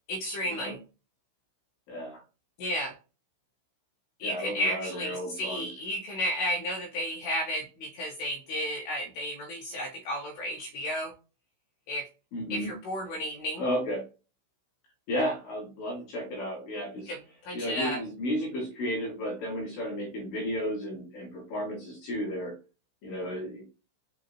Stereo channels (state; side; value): late; right; 16 ms